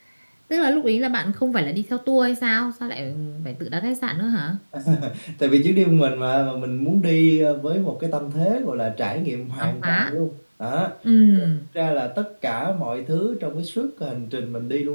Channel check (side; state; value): both; inverted; correlation -1.00